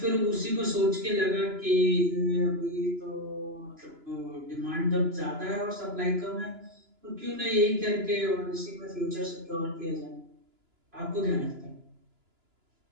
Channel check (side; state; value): left; late; 2.9 ms